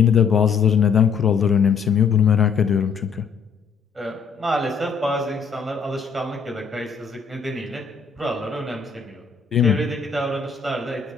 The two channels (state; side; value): quieter; right; 5.8 dB